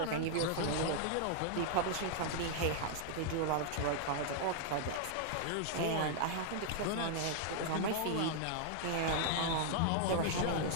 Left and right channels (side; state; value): both; different; correlation -0.01